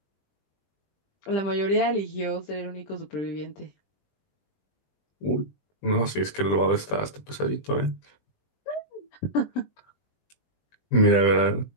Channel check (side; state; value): right; late; 20 ms